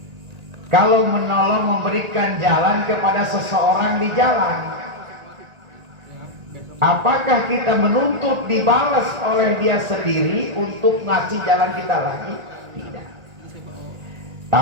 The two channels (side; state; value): left; late; 1.8 ms